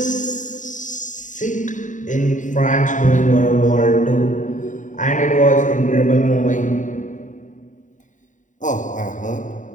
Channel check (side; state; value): right; late; 0.36 ms